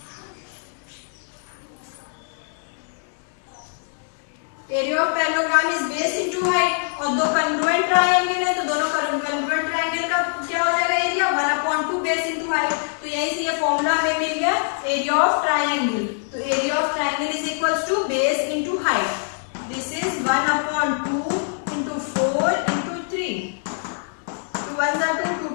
Area of parallelogram is base into height. और दो कॉन्ग्रुएंट ट्रायंगल है तो दोनों कॉन्ग्रुएंट ट्रायंगल का क्या हो जाएगा? Area 1/2 base into height. तो यहीं से ये फॉर्मूला हमें मिल गया एरिया ऑफ ट्रायंगल. तो area of triangle is equals to base into height. This is 1/2 into 4 into 3. 2 1s are 2, 2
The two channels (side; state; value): right; silent; digital silence